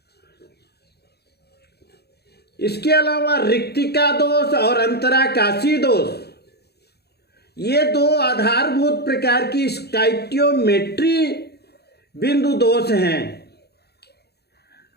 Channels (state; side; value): late; right; 0.47 ms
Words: इसके अलावा रिक्तिका दोष और अंतराकाशी दोष, ये 2 आधारभूत प्रकार की स्टाइकियोमेट्री बिंदु दोष हैं।